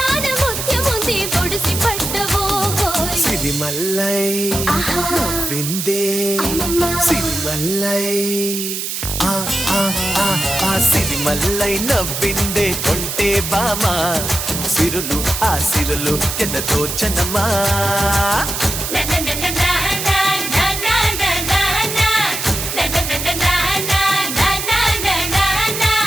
ముత్యముంది ఒడిసి పట్టబోయ్ సిరిమల్లై నవ్విందే సిరిమల్లై సిరిమల్లై నవ్విందే కొంటే బామా సిరులు ఆ సిరులు ఎదదోచెనమ్మా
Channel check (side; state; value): right; noise; hiss, 4 dB below the sound